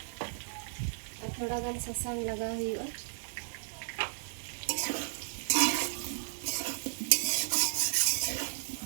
ar thoda gan sasang laga huyua.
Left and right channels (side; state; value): left; silent; digital silence